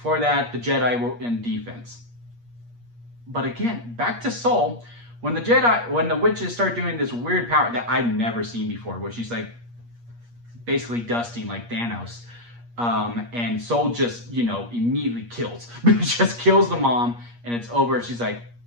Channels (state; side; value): late; left; 8.5 ms